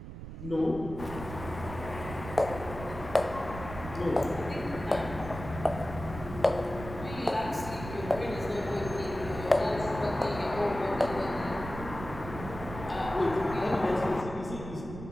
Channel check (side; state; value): right; noise; rumble, 10 dB below the sound